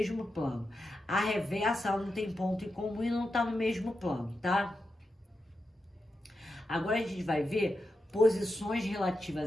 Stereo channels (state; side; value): normal; both; correlation 0.88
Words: plano. A reversa, ela não tem ponto em comum e não está no mesmo plano, tá? Agora a gente vai ver posições